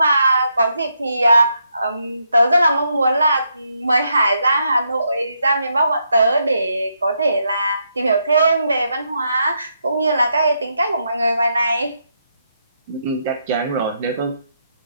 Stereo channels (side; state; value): both; inverted; correlation -0.79